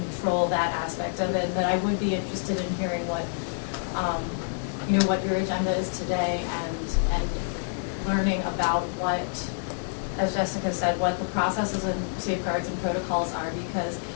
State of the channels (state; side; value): silent; right; 60 dB below the other